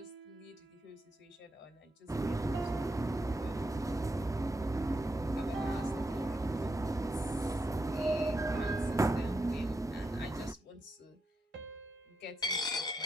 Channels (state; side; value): normal; both; correlation 0.83